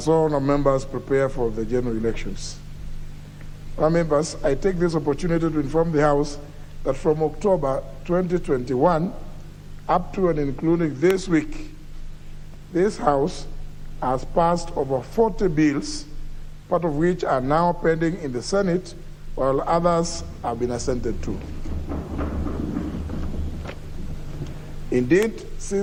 all our members prepare for the general elections. Our members, I take this opportunity to inform the House that from October 2021 up to and including this week, this House has passed over 40 bills, part of which are now pending in the Senate, while others have been assented to. Indeed,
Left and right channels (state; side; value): identical; both; correlation 1.00